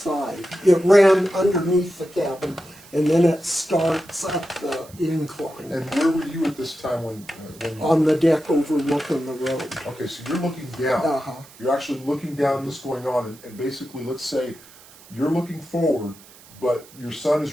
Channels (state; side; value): noise; right; hiss, 23 dB below the sound